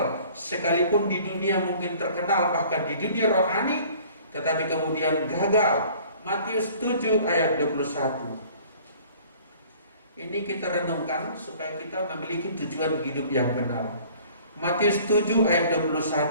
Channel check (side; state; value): both; inverted; correlation -0.51